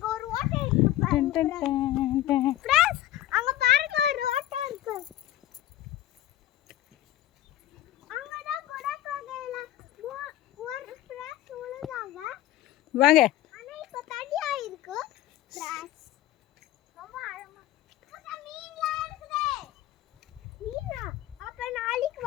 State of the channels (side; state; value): right; quieter; 13.7 dB